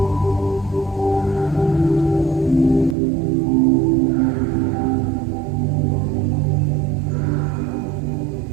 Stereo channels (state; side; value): drops out; left; at 3.0 s